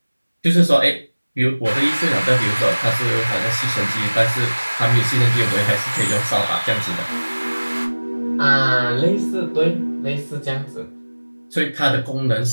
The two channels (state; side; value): inverted; both; correlation -1.00